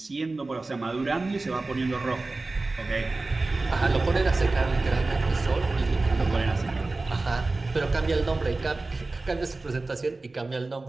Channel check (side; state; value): left; quieter; 3.3 dB